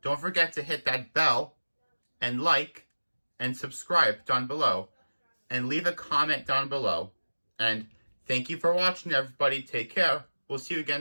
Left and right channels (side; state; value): both; inverted; correlation -1.00